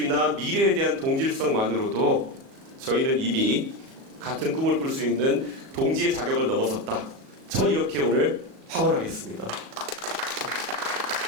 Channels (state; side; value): late; left; 37 ms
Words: 미래에 대한 동질성만으로도 저희는 이미 같은 꿈을 꿀 수 있는 동지의 자격을 넘어섰다. 전 이렇게 오늘 확언하겠습니다.